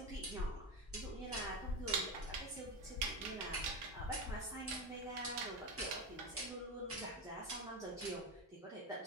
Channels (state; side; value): normal; both; correlation 0.17